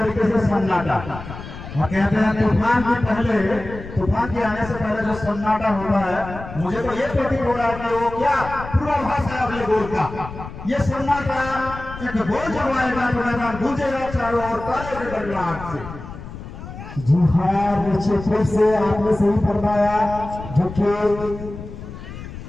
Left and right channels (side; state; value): left; noise; rumble, 12 dB below the sound